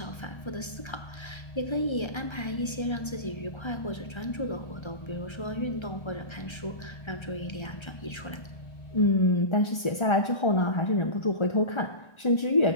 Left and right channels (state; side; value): late; right; 1.3 ms